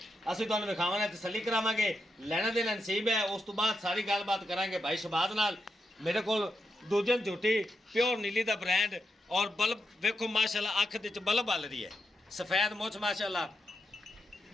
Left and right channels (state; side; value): normal; both; correlation 0.85